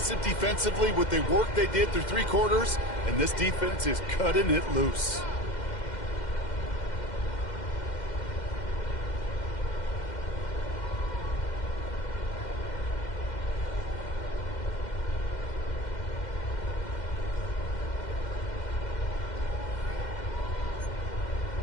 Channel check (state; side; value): late; right; 2.1 ms